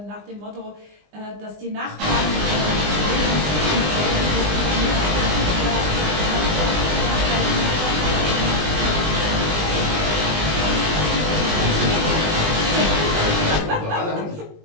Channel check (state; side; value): late; left; 20 ms